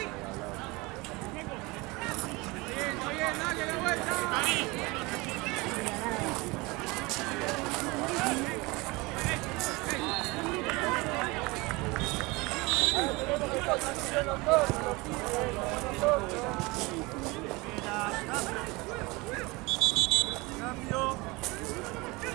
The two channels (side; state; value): left; quieter; 24.2 dB